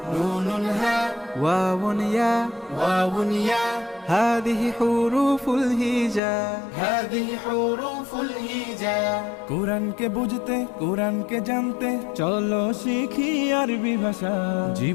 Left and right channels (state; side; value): drops out; right; at 6.2 s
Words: نون هاء واو ياء واو ياء هذه حروف الهجاء هذه حروف الهجاء কোরআনকে বুঝতে কোরআনকে জানতে চলো শিখি আরবি ভাষা